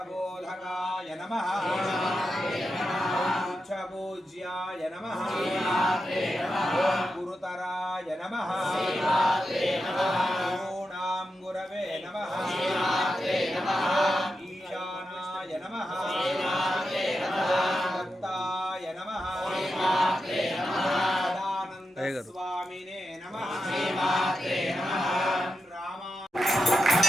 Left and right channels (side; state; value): both; normal; correlation 0.88